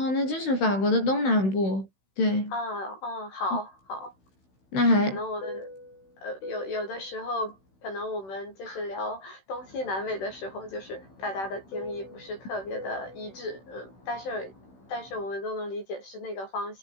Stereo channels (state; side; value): late; right; 16 ms